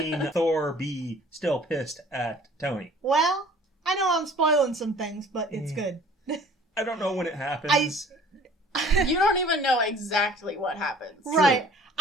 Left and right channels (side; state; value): both; normal; correlation 0.51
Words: Thor be still pissed at Tony. Well, I know I'm spoiling some things, but it's good. I don't know when it happens. You don't even know exactly what happens. Right.